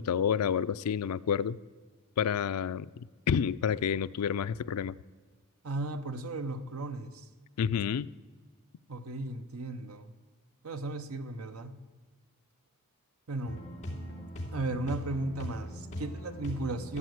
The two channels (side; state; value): right; quieter; 4.1 dB